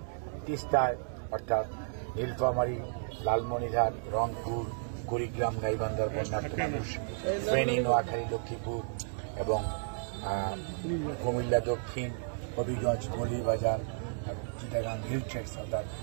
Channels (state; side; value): silent; left; digital silence